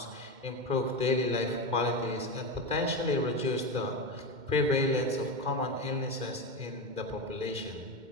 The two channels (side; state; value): left; late; 2.1 ms